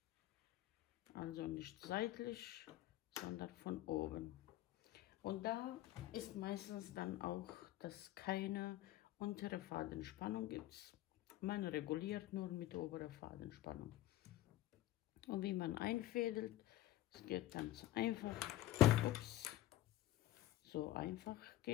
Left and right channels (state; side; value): quieter; right; 14.7 dB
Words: Also nicht seitlich, sondern von oben. Und da ist meistens dann auch, dass keine untere Fadenspannung gibt. Man reguliert nur mit oberer Fadenspannung. Und wie man einfädelt, es geht ganz einfach. Ups. So einfach